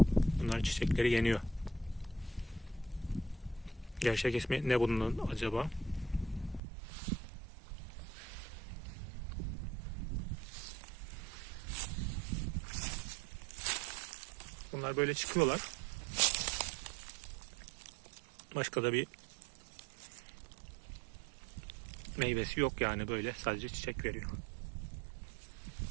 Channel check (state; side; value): drops out; left; at 6.6 s